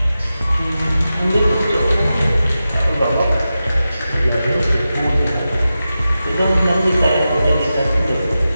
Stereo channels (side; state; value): both; inverted; correlation -0.92